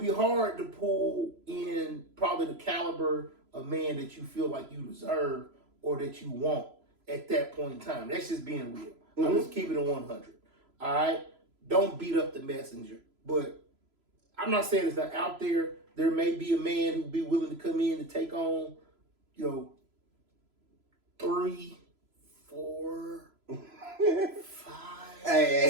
hard to pull in probably the caliber of man that you feel like you deserve or that you want at that point in time. That's just being real. I'm just keeping it 100. All right, don't beat up the messenger. But I'm not saying it's not out there. There may be a man who'd be willing to come in and take on, 3, 4, 5.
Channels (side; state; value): left; late; 3.0 ms